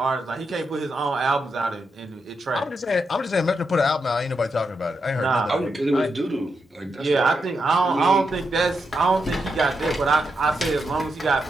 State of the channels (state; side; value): normal; both; correlation 0.84